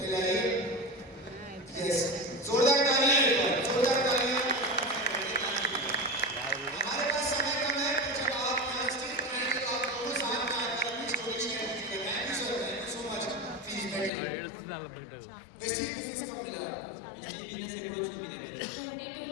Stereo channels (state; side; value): drops out; right; at 14.1 s